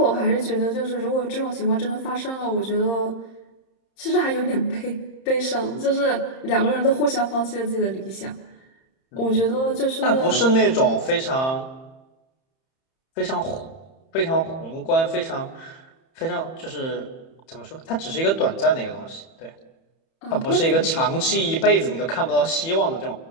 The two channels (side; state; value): right; late; 31 ms